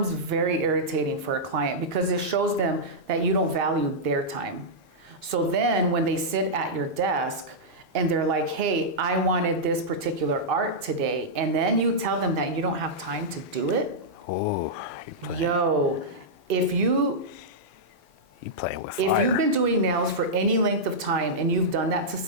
very irritating for a client because it shows them that you don't value their time. So then when they sit at your desk and they're like, hey, I wanted this particular art today, and then you tell them that you don't have time to do it. Oh, if you playing with fire. If you've been doing nails for any length of time and you've done that to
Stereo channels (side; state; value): both; normal; correlation -0.10